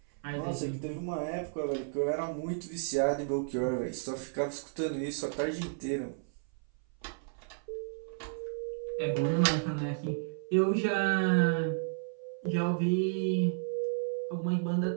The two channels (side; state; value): left; silent; 56 dB below the other